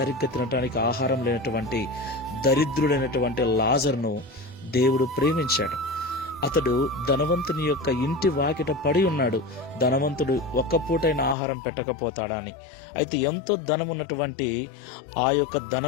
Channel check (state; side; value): drops out; right; at 11.4 s